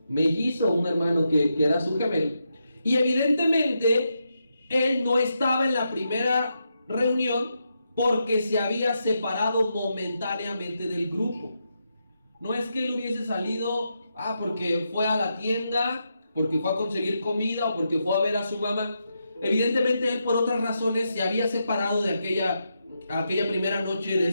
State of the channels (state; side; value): inverted; both; correlation -0.84